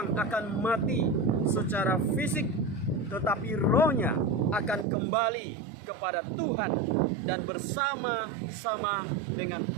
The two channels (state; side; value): drops out; left; at 4.9 s